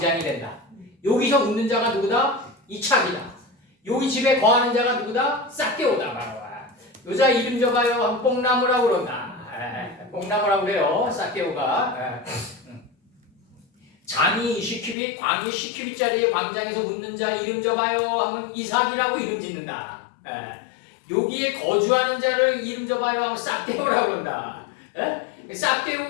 된다. 여기서 웃는 자가 누구다? 이착이다. 여기 집에 거하는 자가 누구다? 싹개오다. 바로 여자 이름 줘봐요. 뽕나무라고 그런다. 뽕나무라고 그래요. 싹개오가. 장이 시키비 광이 시키비짜리의 광장에서 웃는 자 이름 줘봐요 하면 이삭이라고 이름 짓는다. 여기에 거주하는 자를 이름 줘봐요 하면 싹개오라고 그런다.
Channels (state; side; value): drops out; right; at 15.0 s